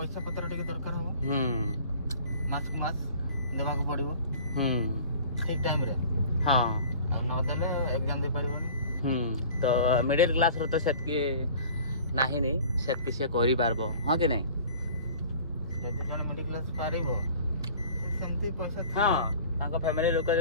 पत्र टिके दरकार हो मास को मास देवा को पड़िबो ठीक टाइम रे हाँ आ न देले एग्जाम दे परिबोनी तो मिडिल क्लास रो तो सेतकी नाही नी सेतकी से करि पारबो हां कि नहीं यदि जन मिडिल क्लास पारिबो सेमती पैसा हां ताको फैमिली लोक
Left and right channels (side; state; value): both; inverted; correlation -0.45